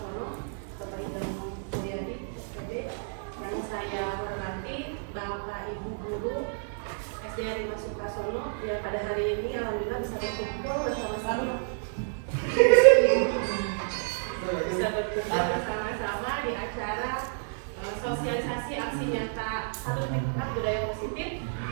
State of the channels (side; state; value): left; silent; digital silence